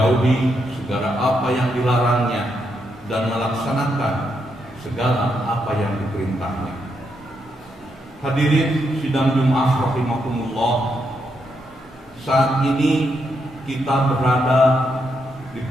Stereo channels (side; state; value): both; normal; correlation 0.80